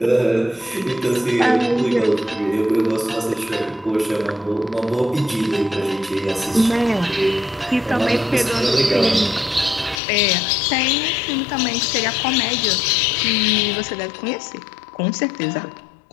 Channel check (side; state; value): right; drops out; at 10.0 s